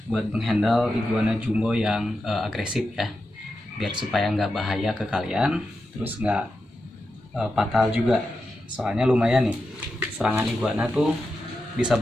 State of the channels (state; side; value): normal; both; correlation 0.89